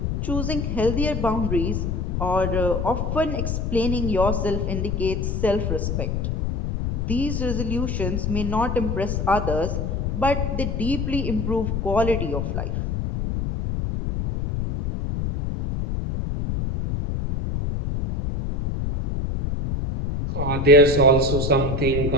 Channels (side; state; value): left; noise; rumble, 1 dB below the sound